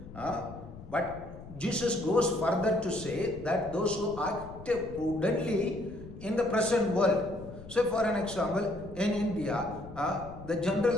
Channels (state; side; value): noise; left; rumble, 15 dB below the sound